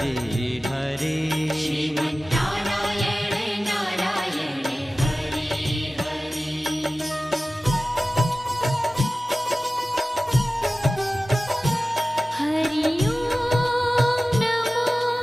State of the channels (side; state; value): both; normal; correlation 0.96